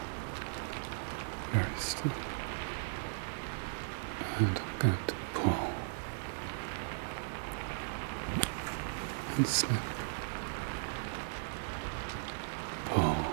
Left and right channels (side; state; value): left; silent; digital silence